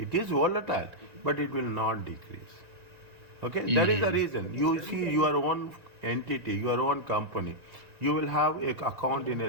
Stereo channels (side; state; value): left; late; 1.9 ms